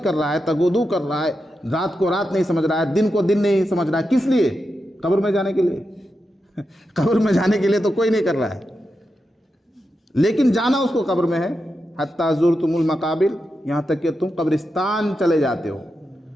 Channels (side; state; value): both; normal; correlation 0.88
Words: کر رہا ہے، تگودو کر رہا ہے، رات کو رات نہیں سمجھ رہا ہے، دن کو دن نہیں سمجھ رہا ہے، کس لیے؟ قبر میں جانے کے لیے۔ قبر میں جانے کے لیے تو کوئی نہیں کر رہا ہے، لیکن جانا اس کو قبر میں ہے۔ حتیٰ زرتم المقابر، یہاں تک کہ تم قبرستان چلے جاتے ہو۔